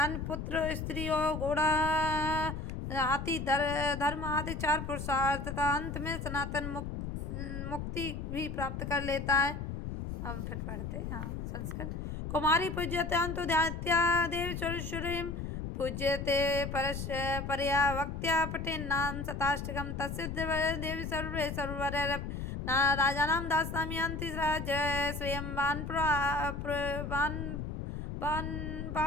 पुत्र स्त्री और घोड़ा हाथी धर्म आदि 4 पुरुषार्थ तथा अंत में सनातन मुक्ति भी प्राप्त कर लेता है। हम फिर पढ़ते हैं संस्कृत। कुमारी पूज्यतांतो ध्यात्या देवी सुरेश्वरीं पूज्यते परया वक्त्या पठेन् नाम शताष्टकं तस्य देवी सर्वे सर्ववर राजानां दास्यामि यान्ति जय श्रियं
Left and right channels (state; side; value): noise; left; rumble, 5 dB below the sound